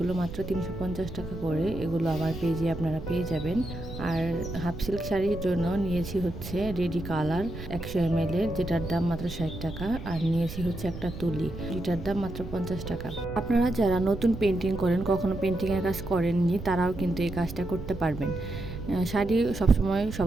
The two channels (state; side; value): noise; right; rumble, 10 dB below the sound